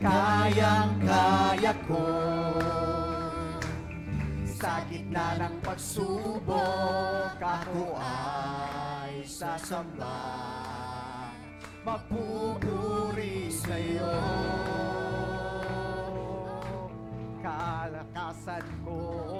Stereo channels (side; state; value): both; identical; correlation 1.00